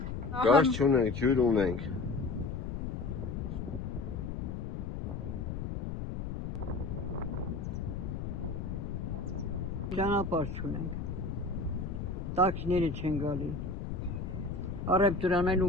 Գազ չունենք, ջուր ունենք։ Ճանապարհ չունենք։ Տաքսիները չեն գալի։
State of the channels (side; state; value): left; noise; rumble, 4 dB below the sound